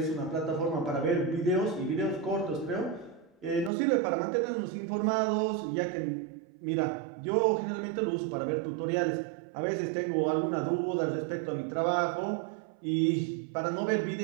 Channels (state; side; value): drops out; left; at 3.7 s